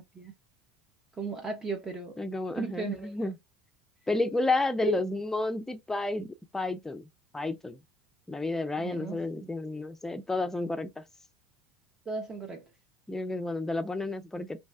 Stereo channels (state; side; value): normal; both; correlation 0.81